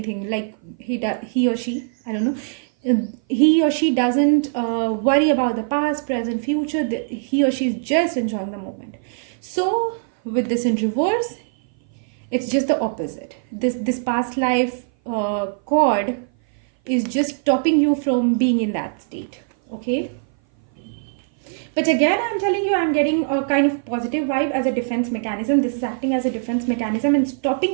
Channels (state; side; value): silent; left; 57 dB below the other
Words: like he or she, I don't know, he or she doesn't worry about the past, present, future. He or she is just enjoying the moment. So with this in reverse, it's just the opposite. This past life cord is just stopping you from being in that state, okay? But again, I'm telling you, I'm getting a kind of positive vibe as a defense mechanism. This is acting as a defense mechanism and